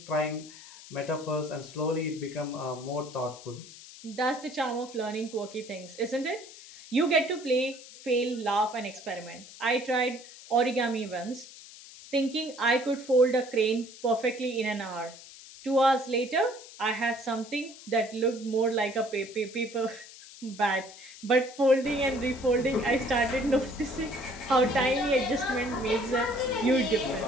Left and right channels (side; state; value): left; noise; hiss, 17 dB below the sound